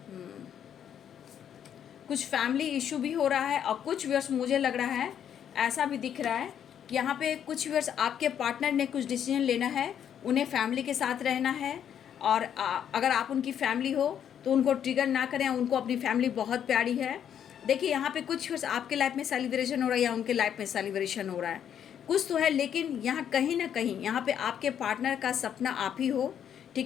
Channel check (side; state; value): right; quieter; 9.1 dB